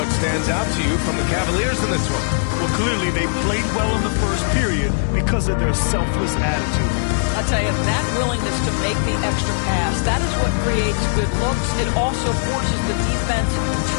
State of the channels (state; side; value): silent; right; digital silence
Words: Stands out to you from the Cavaliers in this one? Well, clearly they played well in the first period because of their selfless attitude. I'll tell you, that willingness to make the extra pass, that is what creates good looks. It also forces the defense